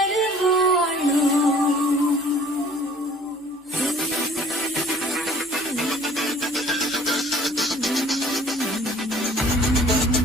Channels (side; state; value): both; normal; correlation 0.52